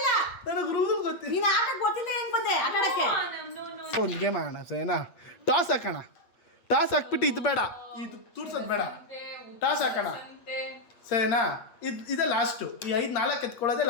ನನಗೆ ರೂಲ್ ಗೊತ್ತಿಲ್ಲ. ನೀನು ಆಟ ಗೊತ್ತಿಲ್ಲ, ಹೆಂಗ್ ಬಂದೆ ಆಟ ಆಡಕ್ಕೆ? ಒಂದು ಗೇಮ್ ಆಡೋಣ ಸರಿನಾ? ಟಾಸ್ ಹಾಕೋಣ. ಟಾಸ್ ಹಾಕ್ಬಿಟ್ಟು ಇದು ಬೇಡ, ಇದು ತೂರ್ಸೋದು ಬೇಡ, ಟಾಸ್ ಹಾಕೋಣ ಸರಿನಾ? ಇದೇ ಲಾಸ್ಟು. ಈ 5-4 ಎತ್ಕೊಳ್ಳೋದೇ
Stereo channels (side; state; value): right; late; 8.5 ms